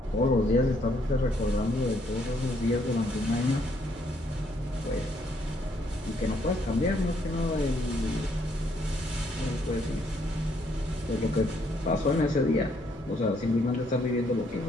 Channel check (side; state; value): both; normal; correlation 0.70